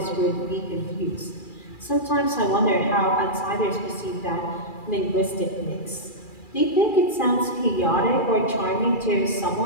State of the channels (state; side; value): late; right; 2.4 ms